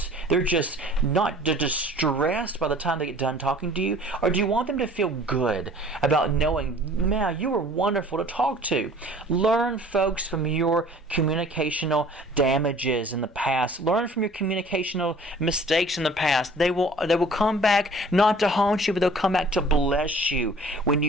not distressed by the time they get done talking to you? Or do you want them to feel good about knowing, man, you were wonderful to talk to? Learn, folks, from your communicational damages in the past. Learn from your communicational mistakes in the past. They will come back not to haunt you, but they'll come back to bless you when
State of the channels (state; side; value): normal; both; correlation 0.50